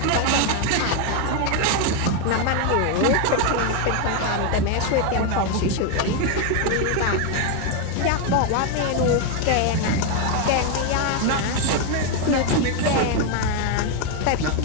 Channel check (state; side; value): different; both; correlation 0.01